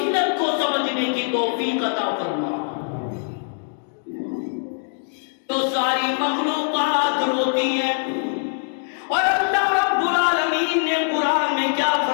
کو سمجھنے کی توفیق عطا فرما۔ تو ساری مخلوقات روتی ہے، اور اللہ رب العالمین نے قرآن میں کیا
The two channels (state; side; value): silent; right; digital silence